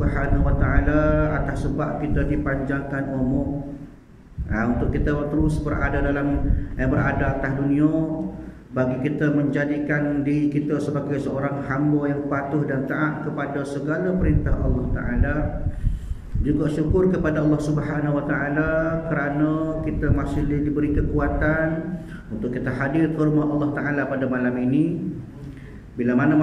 wa taala atas sebab kita dipanjangkan umur, untuk kita terus berada atas dunia, bagi kita menjadikan diri kita sebagai seorang hamba yang patuh dan taat kepada segala perintah Allah taala. Juga syukur kepada Allah Subhanahu wa taala kerana kita masih diberi kekuatan untuk kita hadir ke rumah Allah taala pada malam ini. Bila mana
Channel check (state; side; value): identical; both; correlation 1.00